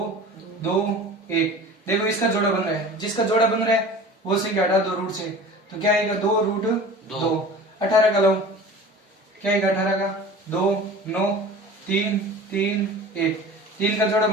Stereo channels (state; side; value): normal; both; correlation 0.39